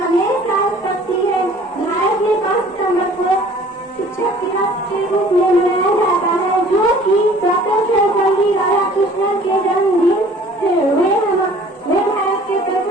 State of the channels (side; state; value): both; normal; correlation 0.51